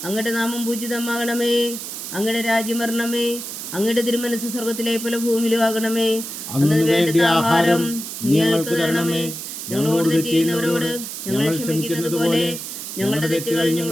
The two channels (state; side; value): noise; right; hiss, 8 dB below the sound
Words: അങ്ങയുടെ നാമം പൂജിതമാകണമേ. അങ്ങയുടെ രാജ്യം വരണമേ. അങ്ങയുടെ തിരുമനസ് സ്വർഗത്തിലെ പോലെ ഭൂമിയിലും ആകണമേ. അന്നു വേണ്ട ആഹാരം ഞങ്ങൾക്ക് തരണമേ. ഞങ്ങളോട് തെറ്റ് ചെയ്യുന്നവരോട് ഞങ്ങൾ ക്ഷമിക്കുന്നത് പോലെ ഞങ്ങളുടെ തെറ്റുകൾ